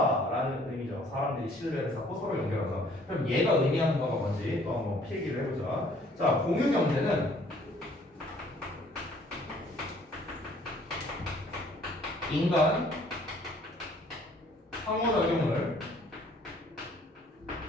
의미죠. 사람들이 신뢰를 쌓고 서로 연결하다. 그럼 얘가 의미하는 거가 뭔지 또 한번 필기를 해보자. 자, 공유 경제는 인간 상호작용을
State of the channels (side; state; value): both; normal; correlation 0.59